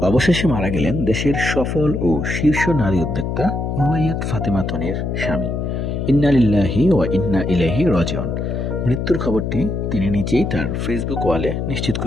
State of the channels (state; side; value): noise; left; hum, 2 dB below the sound